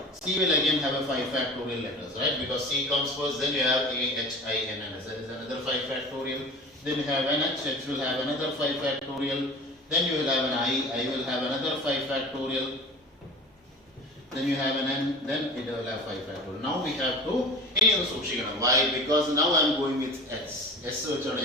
C will again have a 5 factorial letters, right? Because C comes first, then you have A, H, I, N and S. That is another 5 factorial. Then you have an H, H will have another 5 factorial. Then you will have an I will have another 5 factorial. Then you have an N, then it will have 5 factorial. Now we have to, why? Because now I am going with S.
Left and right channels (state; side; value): normal; both; correlation 0.37